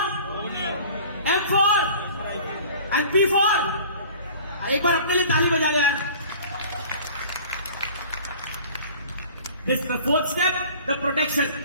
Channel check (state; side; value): inverted; both; correlation -0.46